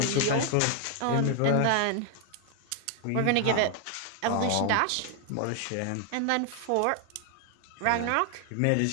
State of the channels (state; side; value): different; both; correlation 0.00